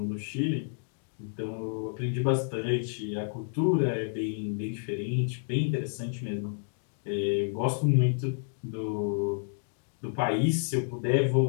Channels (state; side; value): silent; right; digital silence